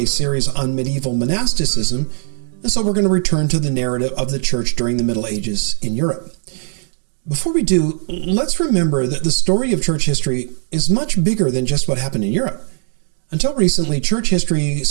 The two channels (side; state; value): left; silent; 67 dB below the other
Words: series on medieval monasticism, and so we're going to return to the narrative of the church during the Middle Ages in Europe. Before we do, let's remember that the story of church history is much bigger than just what happened in Europe. Until recently, church history